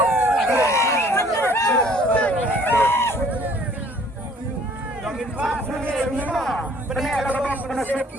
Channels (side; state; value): both; normal; correlation 0.56